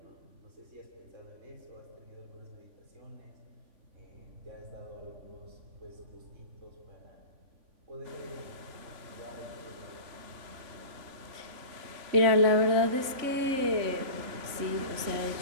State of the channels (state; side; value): late; left; 3.5 ms